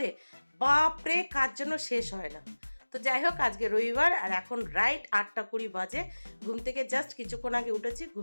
বাপরে কাজ যেন শেষ হয় না। তো যাই হোক, আজকে রবিবার আর এখন রাইট 8:20 বাজে। ঘুম থেকে জাস্ট কিছুক্ষণ আগে উঠেছি।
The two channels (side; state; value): both; inverted; correlation -1.00